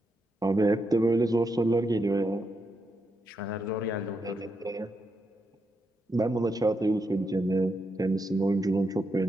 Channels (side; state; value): both; normal; correlation 0.83